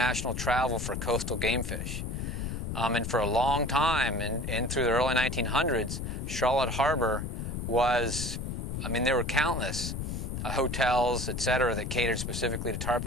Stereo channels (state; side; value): noise; left; rumble, 4 dB below the sound